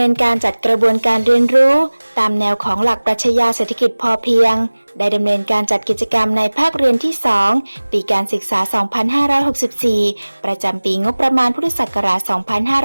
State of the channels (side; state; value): both; inverted; correlation -1.00